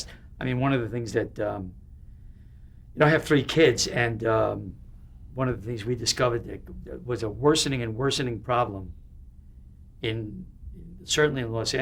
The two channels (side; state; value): both; identical; correlation 1.00